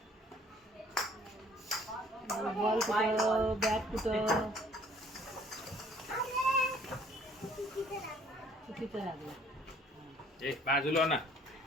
बॉल कुठं, बॅट कुठं, चुकीचं लागलं. एक बाजूला ना.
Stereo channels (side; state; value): both; normal; correlation 0.58